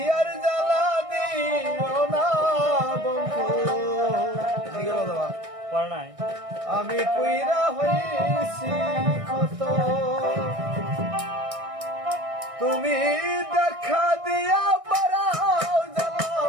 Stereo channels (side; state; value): left; late; 1.6 ms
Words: আর জ্বালা দিও না বন্ধু আমি পুইরা হইছি কত তুমি দেখা দিয়া বারাও জ্বালা